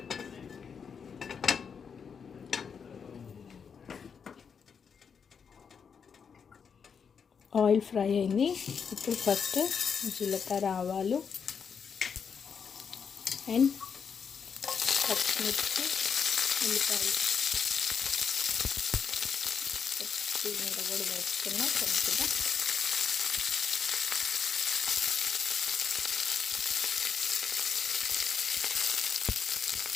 ఆయిల్ ఫ్రై అయింది. ఇప్పుడు ఫస్ట్ జీలకర్ర, ఆవాలు అండ్ పచ్చిమిర్చి, ఉల్లిపాయలు కొత్తిమీర కూడా వేసుకున్నా కొద్దిగా.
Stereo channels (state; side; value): quieter; right; 6.5 dB